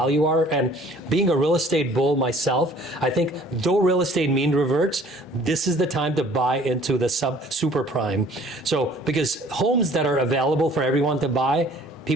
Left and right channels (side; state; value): both; normal; correlation 0.53